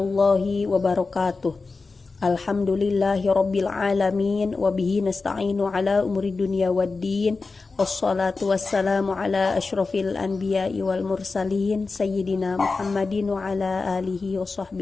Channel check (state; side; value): quieter; right; 4.0 dB